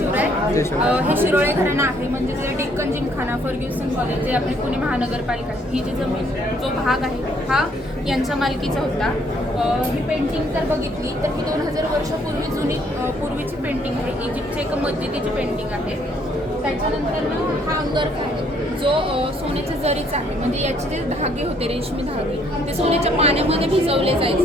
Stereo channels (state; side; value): normal; both; correlation 0.66